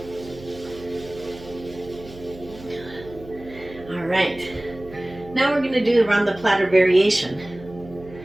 All right. Now we're going to do around the platter variation.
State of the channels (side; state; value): right; noise; hum, 18 dB below the sound